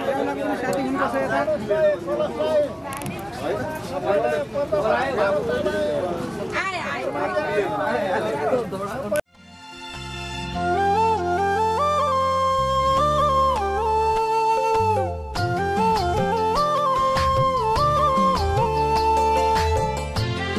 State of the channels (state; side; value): identical; both; correlation 1.00